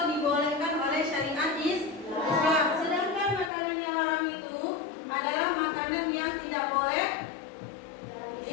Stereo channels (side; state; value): right; drops out; at 3.5 s